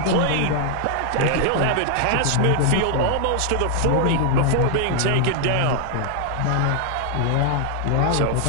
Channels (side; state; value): both; different; correlation 0.00